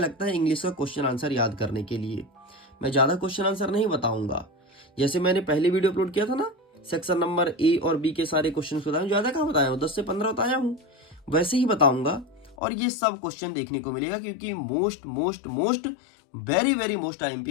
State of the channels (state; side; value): drops out; right; at 12.6 s